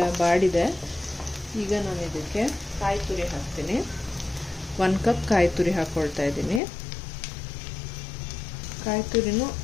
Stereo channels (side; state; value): right; drops out; at 6.6 s